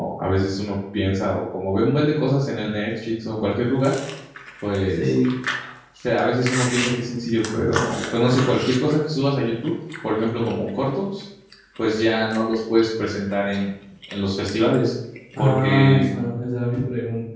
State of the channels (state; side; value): identical; both; correlation 1.00